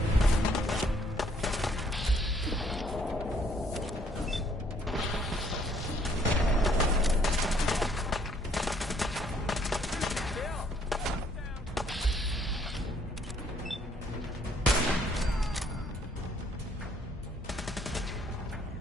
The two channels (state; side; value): normal; both; correlation 0.65